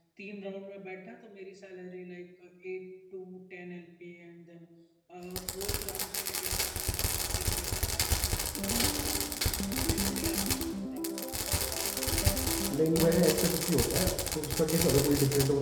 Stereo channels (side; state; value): both; identical; correlation 1.00